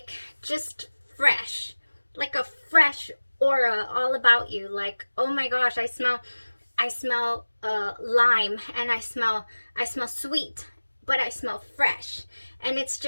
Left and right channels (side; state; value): both; inverted; correlation -1.00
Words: just fresh, like a fresh aura all about you. Like, oh my gosh, I smell lime, and I smell sweet, but I smell fresh. And it's